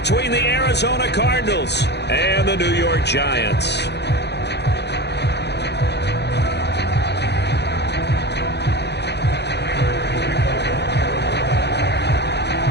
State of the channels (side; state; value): right; late; 0.49 ms